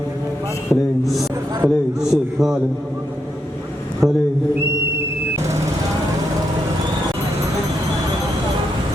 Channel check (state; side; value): normal; both; correlation 0.81